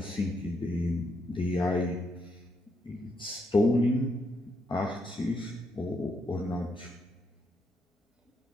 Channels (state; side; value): normal; both; correlation 0.78